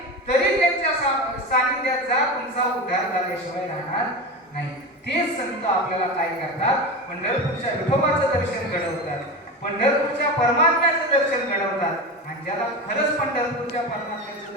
तरी त्यांच्या सानिध्यात जा. तुमचा उद्धार झाल्याशिवाय राहणार नाही. तेच संत आपल्याला काय करतात? पंढरपूरच्या विठोबाचं दर्शन घडवतात, पंढरपूरच्या परमात्म्याचं दर्शन घडवतात. आणि ज्याला खरंच पंढरपूरच्या परमात्म्याचं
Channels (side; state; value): both; normal; correlation 0.24